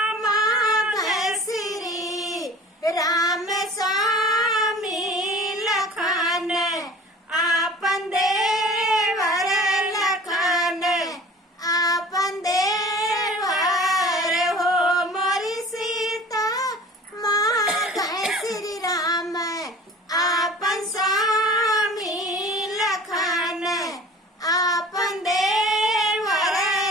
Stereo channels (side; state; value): both; normal; correlation 0.44